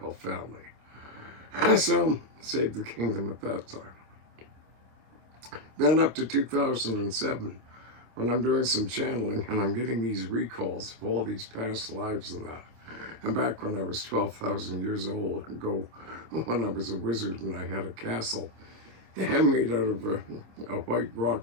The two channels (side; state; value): left; late; 26 ms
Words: family. So, saved the kingdom at that time. Then up to 2007, when I'm doing some channeling and I'm getting these recalls of all these past lives and that. And back when I was 12,000 years old ago, when I was a wizard and I had a castle made out of a white